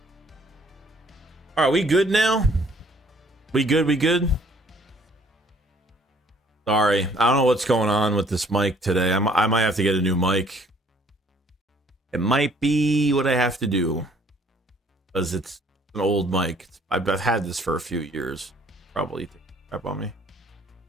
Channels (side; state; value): both; normal; correlation 0.60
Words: All right, we good now? We good? We good? Sorry, I don't know what's going on with this mic today. I might have to get a new mic. It might be what I have to do because it's an old mic. I've had this for a few years. Probably take a crap on me.